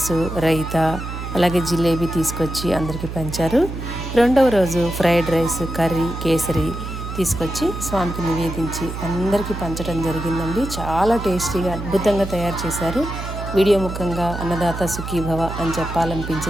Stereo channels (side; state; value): right; noise; hum, 7 dB below the sound